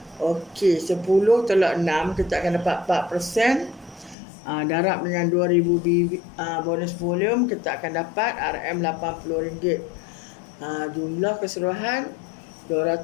Okey, 10 tolak 6, kita akan dapat 4%. Darab dengan 2000 bonus volume, kita akan dapat RM80. Jumlah keseluruhan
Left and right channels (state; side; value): drops out; right; at 4.2 s